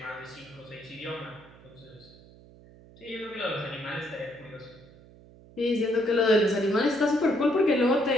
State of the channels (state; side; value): noise; right; hum, 23 dB below the sound